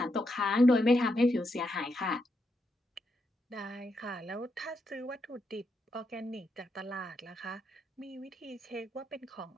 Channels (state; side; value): normal; both; correlation 0.82